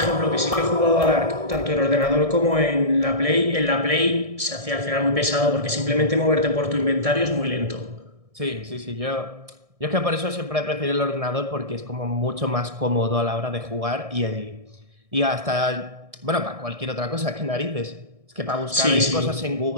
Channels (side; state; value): left; late; 1.6 ms